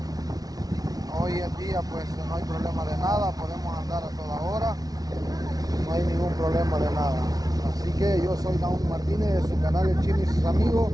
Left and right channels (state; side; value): late; left; 0.18 ms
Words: Hoy en día pues no hay problema de nada, podemos andar a toda hora, no hay ningún problema de nada. Así que yo soy Naum Martínez de su canal El Chino y sus amigos,